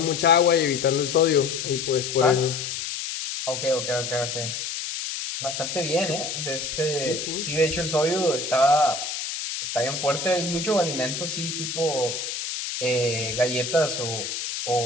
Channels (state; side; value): noise; left; hiss, 5 dB below the sound